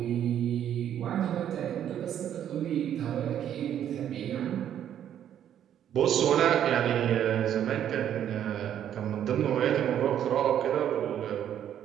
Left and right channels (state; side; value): quieter; left; 10.1 dB